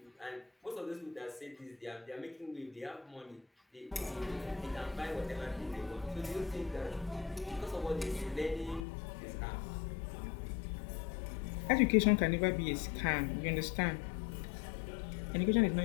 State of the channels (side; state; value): right; drops out; at 8.8 s